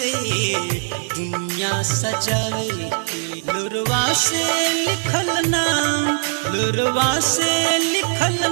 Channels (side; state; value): left; silent; digital silence